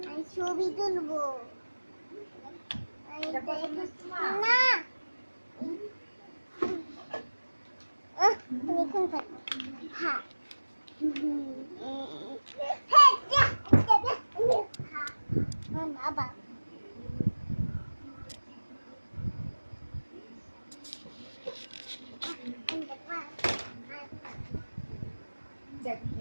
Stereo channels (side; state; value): both; inverted; correlation -1.00